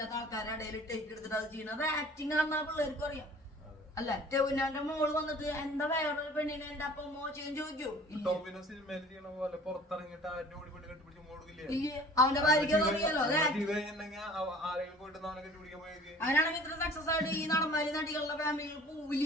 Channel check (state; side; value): normal; both; correlation 0.48